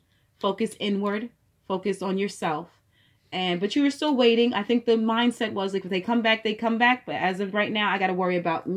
Focus inward. Focus on yourself. But you were still waiting. I think the mindset was like, if they come back, they come back. But as of right now, I got to worry about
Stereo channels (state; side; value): identical; both; correlation 1.00